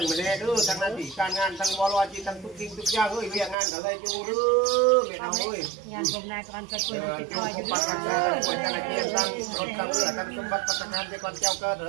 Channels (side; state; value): left; drops out; at 3.6 s